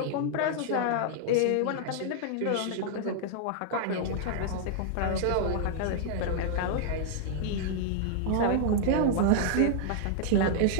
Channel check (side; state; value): both; different; correlation -0.01